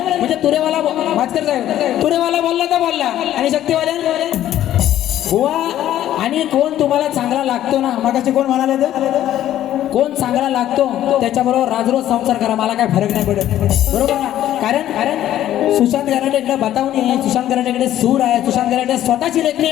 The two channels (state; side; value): quieter; right; 12.4 dB